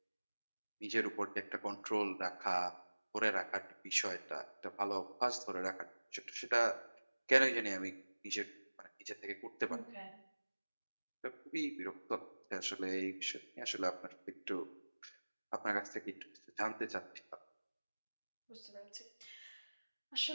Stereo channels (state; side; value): inverted; both; correlation -1.00